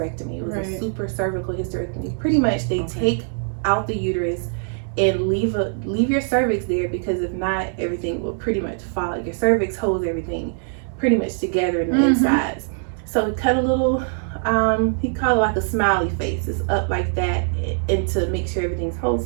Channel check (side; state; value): left; silent; 64 dB below the other